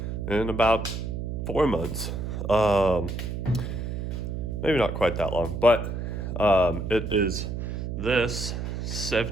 in about 4 months. Maybe not quite that long, but it is this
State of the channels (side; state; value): right; noise; hum, 4 dB below the sound